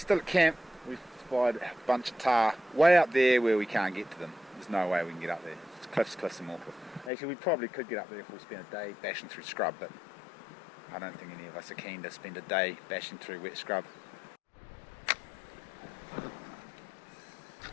at camp. We've spied a bunch of tahr way up there where we can't get to them. There's no way we can get up there. It's cliffs and awkward. Actually, we probably could get up there if we spent a day bashing through scrub, but I don't think any of us are keen to spend a day bashing through wet scrub.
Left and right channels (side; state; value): right; drops out; at 7.1 s